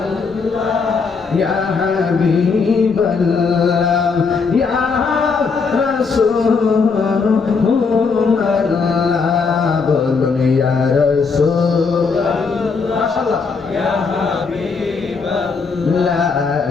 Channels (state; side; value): quieter; right; 4.9 dB